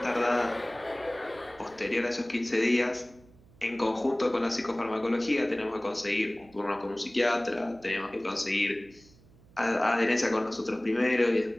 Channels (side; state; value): right; noise; hum, 26 dB below the sound